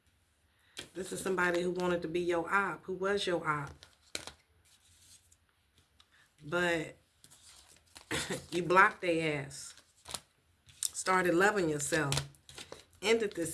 This is somebody who wanted to be your op, who was your op. But you blocked their ass. Started loving yourself. Ended this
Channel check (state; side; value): identical; both; correlation 1.00